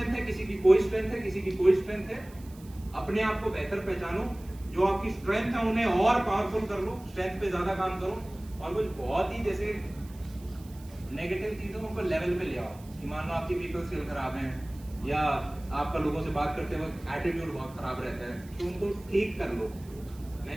है, किसी की कोई स्ट्रेंथ है, किसी की कोई स्ट्रेंथ है। अपने आप को बेहतर पहचानो, जो आपकी स्ट्रेंथ है उन्हें और पावरफुल कर लो, स्ट्रेंथ पे ज्यादा काम करो, और कुछ बहुत ही जैसे नेगेटिव चीजों को लेवल पे ले आओ। कि मान लो आपकी पीपल स्किल खराब है, या आपका लोगों से बात करते वक्त एटीट्यूड बहुत खराब रहता है, तो उनको ठीक कर लो। मैं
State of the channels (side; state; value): right; noise; hiss, 24 dB below the sound